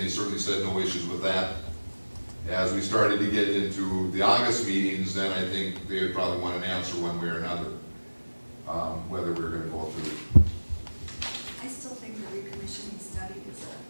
certainly said no issues with that. As we started to get into the August meetings, then I think they would probably want an answer one way or another, whether we're going to go through. I still think the recommissioning study is a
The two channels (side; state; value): both; inverted; correlation -1.00